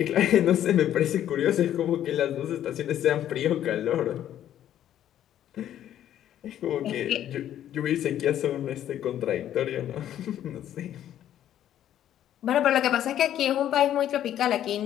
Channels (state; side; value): quieter; right; 11.3 dB